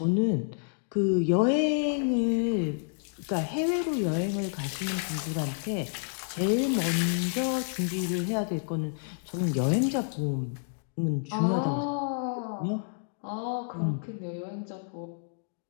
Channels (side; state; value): right; silent; digital silence